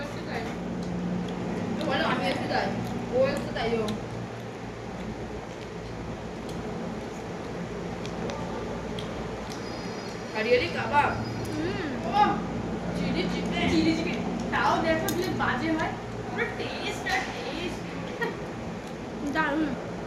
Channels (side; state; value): both; identical; correlation 1.00